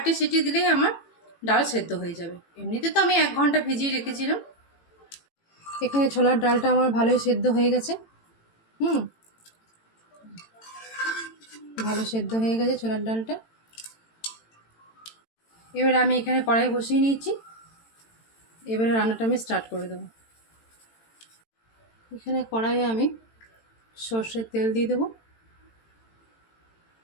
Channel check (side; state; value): right; late; 18 ms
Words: সিটি দিলেই আমার ডাল সেদ্ধ হয়ে যাবে। এমনিতে তো আমি 1 ঘন্টা ভিজিয়ে রেখেছিলাম। এখানে ছোলার ডালটা আমার ভালোই সেদ্ধ হয়ে গেছে। ভালো সেদ্ধ হয়ে গেছে ছোলার ডালটা। এবারে আমি এখানে কড়াই বসিয়ে নিয়েছি, এবারে রান্নাটা আমি স্টার্ট করে দেবো। এখানে কড়াইয়ে আমি সর্ষের তেল দিয়ে দেবো।